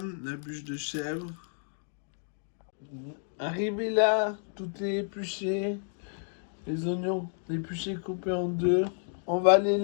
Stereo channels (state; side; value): silent; right; 57 dB below the other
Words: la bûche de chèvre. Arrivé là, tout est épluché. Les oignons épluchés coupés en deux. On va les